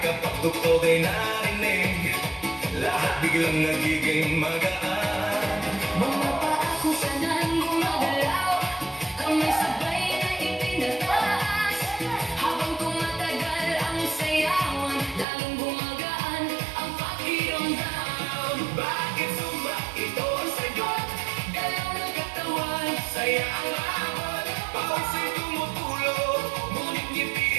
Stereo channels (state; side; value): drops out; left; at 15.2 s